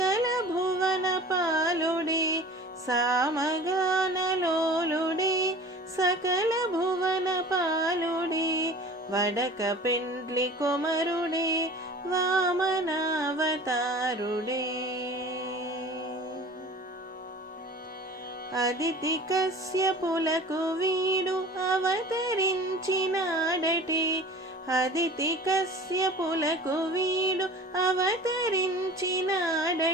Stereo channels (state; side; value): normal; both; correlation 0.42